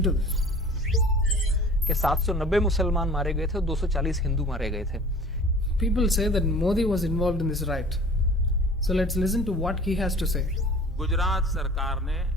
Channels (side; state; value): both; normal; correlation 0.44